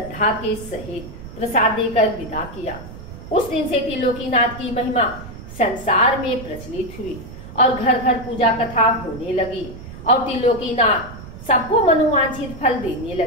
के सहित प्रसाद देकर विदा किया। उस दिन से त्रिलोकीनाथ की महिमा संसार में प्रचलित हुई और घर घर पूजा कथा होने लगी और त्रिलोकीनाथ सबको मनोवांछित फल देने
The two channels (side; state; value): right; noise; rumble, 14 dB below the sound